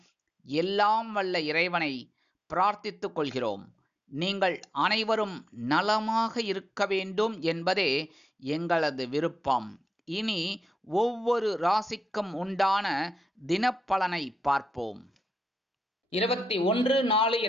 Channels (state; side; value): normal; both; correlation 0.89